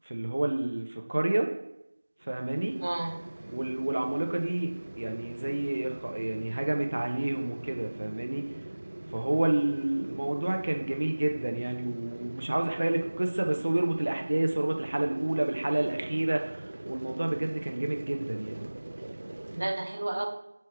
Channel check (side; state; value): both; inverted; correlation -1.00